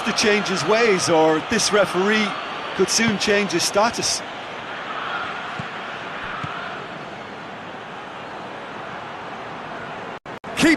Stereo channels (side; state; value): both; identical; correlation 1.00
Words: to change his ways, or this referee could soon change his status.